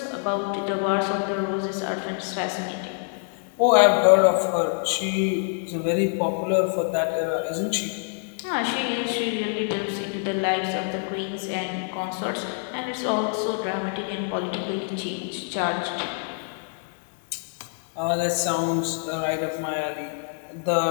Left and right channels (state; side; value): silent; right; 61 dB below the other